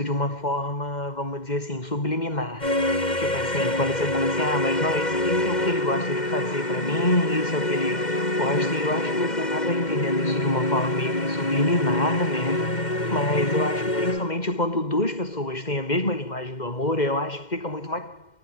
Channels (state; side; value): late; right; 2.1 ms